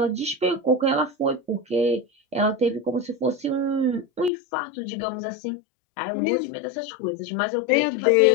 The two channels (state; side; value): drops out; right; at 4.3 s